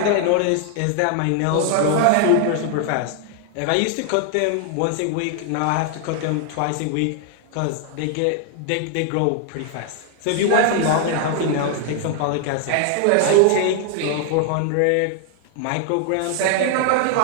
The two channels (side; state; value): both; different; correlation 0.00